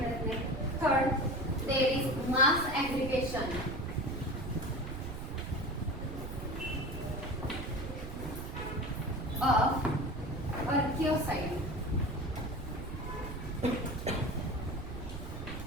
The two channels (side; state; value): right; noise; rumble, 8 dB below the sound